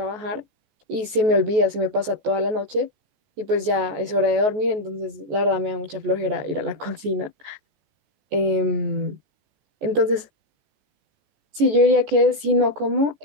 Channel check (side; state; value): left; late; 14 ms